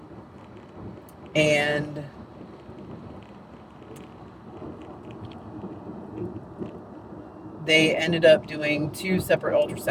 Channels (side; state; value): both; identical; correlation 1.00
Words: and they ended up doing two separate